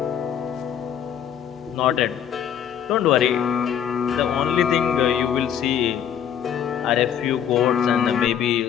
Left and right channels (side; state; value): right; quieter; 9.1 dB